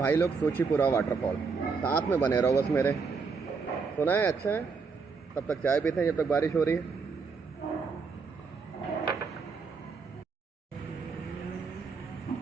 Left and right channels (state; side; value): quieter; left; 5.0 dB